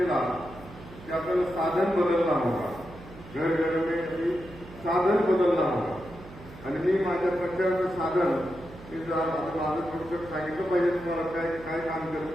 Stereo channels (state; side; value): noise; right; hum, 17 dB below the sound